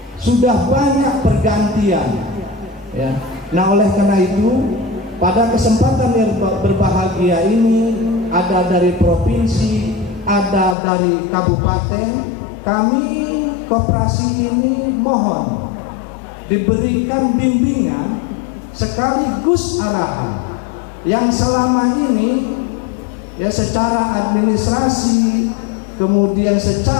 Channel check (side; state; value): right; drops out; at 10.8 s